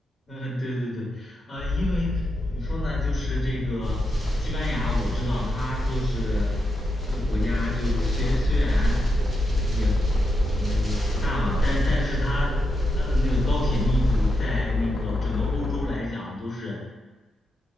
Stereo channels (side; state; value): both; normal; correlation 0.85